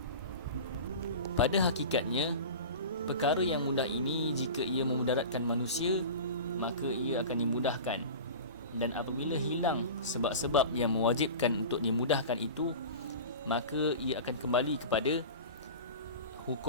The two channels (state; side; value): inverted; both; correlation -0.33